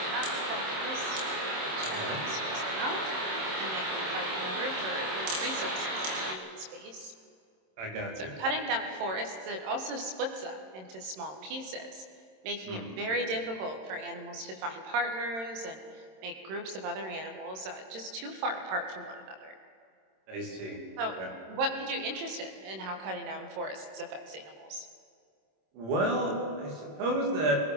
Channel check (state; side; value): late; left; 26 ms